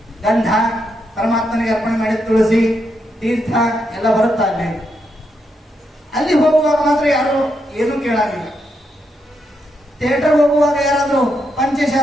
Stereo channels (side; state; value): both; normal; correlation 0.81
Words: ಗಂಧ, ಪರಮಾತ್ಮನಿಗೆ ಅರ್ಪಣೆ ಮಾಡಿದ ತುಳಸಿ, ತೀರ್ಥ ಎಲ್ಲ ಬರುತ್ತಾ ಅಲ್ಲಿ. ಅಲ್ಲಿ ಹೋಗುವಾಗ ಮಾತ್ರ ಯಾರು ಏನು ಕೇಳಾಗಿಲ್ಲ. ಥಿಯೇಟರ್ ಹೋಗುವಾಗ ಯಾರಾದ್ರೂ